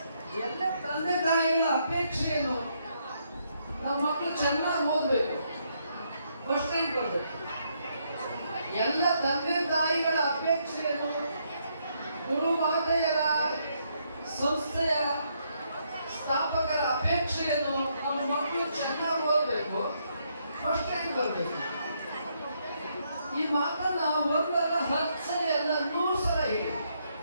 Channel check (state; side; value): inverted; both; correlation -0.75